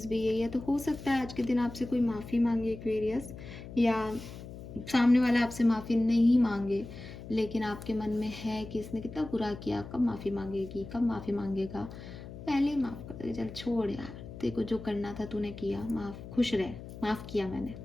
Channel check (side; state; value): left; noise; hum, 12 dB below the sound